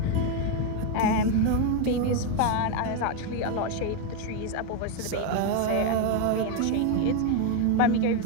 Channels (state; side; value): different; both; correlation 0.01